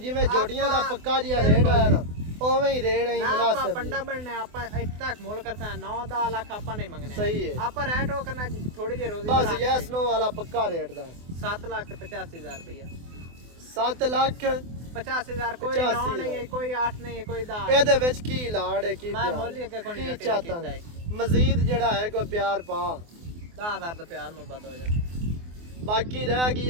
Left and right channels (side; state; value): left; late; 24 ms